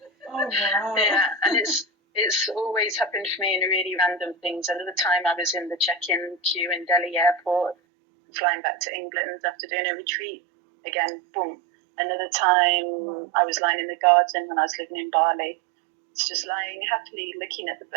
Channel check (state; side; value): drops out; left; at 7.8 s